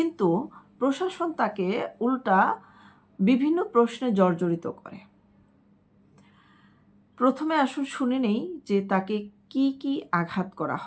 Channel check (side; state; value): both; identical; correlation 1.00